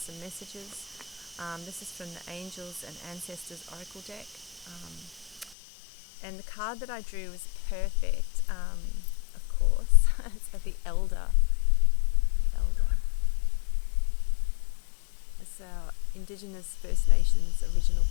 messages. This is from the Angels and Ancestors Oracle deck. And the card that I drew was perfect, of course. It's the Elder. The Elder. It's our Indigenous First Nations original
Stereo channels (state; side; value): drops out; right; at 5.6 s